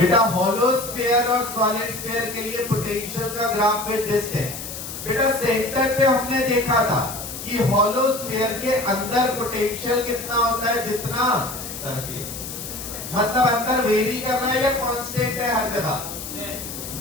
हॉलो स्फीयर और सॉलिड स्फीयर के लिए पोटेंशियल का ग्राफ विद दिस है। बेटा सेंटर पे हमने देखा था कि हॉलो स्फीयर के अंदर पोटेंशियल कितना होता है, जितना सरफेस, मतलब अंदर वेरी कर रहा है या कांस्टेंट है हर जगह।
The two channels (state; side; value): noise; left; hiss, 9 dB below the sound